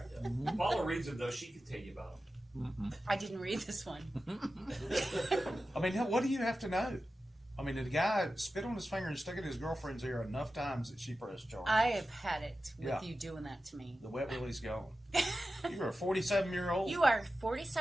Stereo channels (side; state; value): both; normal; correlation 0.93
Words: Paula reads them though. She can tell you about them. I didn't read this one. I mean, what do you have to know? I mean, did the guy spit on his finger and stick it in his girlfriend's ear enough times that she pressed charges? I have had it with Yeah. you doing that to me. The wet Willie's gone. You're a 47-year-old? You are